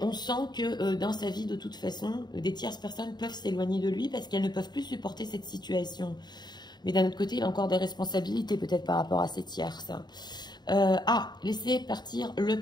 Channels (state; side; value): late; right; 0.21 ms